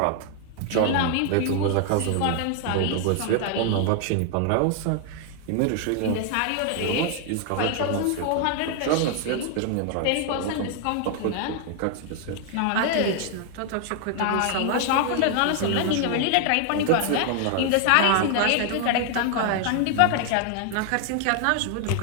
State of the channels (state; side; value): different; both; correlation 0.00